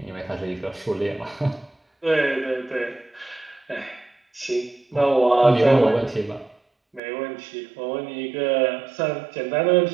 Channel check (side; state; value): left; drops out; at 7.0 s